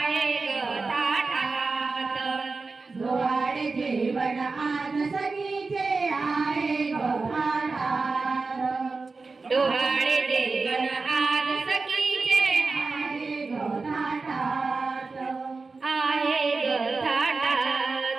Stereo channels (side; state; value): left; quieter; 4.0 dB